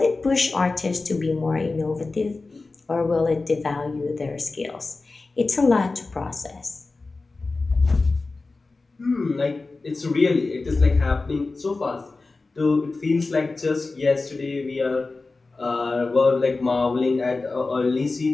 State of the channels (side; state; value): right; quieter; 3.6 dB